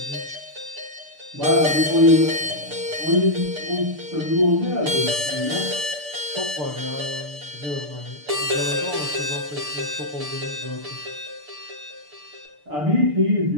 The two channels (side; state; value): left; late; 6.8 ms